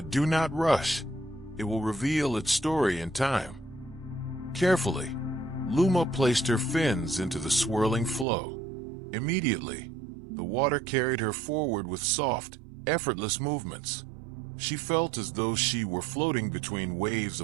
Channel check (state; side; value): drops out; left; at 8.2 s